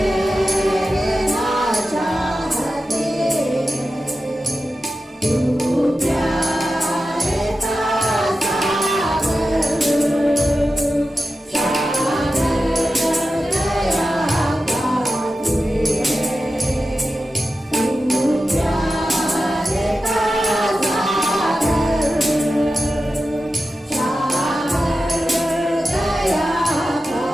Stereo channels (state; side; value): normal; both; correlation 0.92